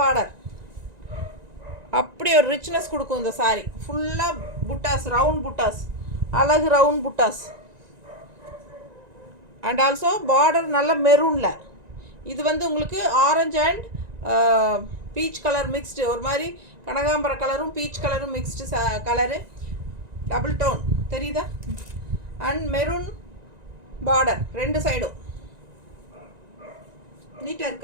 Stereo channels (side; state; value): left; late; 1.9 ms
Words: அப்படி ஒரு ரிச்னஸ் கொடுக்கும் இந்த சாரீ. ஃபுல்லாக புட்டாஸ், ரவுண்ட் புட்டாஸ், அழகு round buttas. And also border நல்ல மெரூனில். இது வந்து உங்களுக்கு orange and peach colour mixed, ஒரு மாதிரி கனகாம்பர கலரும் பீச் கலரும் மிக்ஸ்டு கலரு, டபுள் டோன் தெரியுதா? அண்ட் மெரூன் பார்டர் ரெண்டு சைடும். நீட்டாக